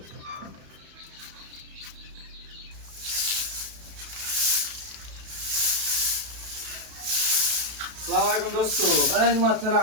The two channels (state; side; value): late; left; 32 ms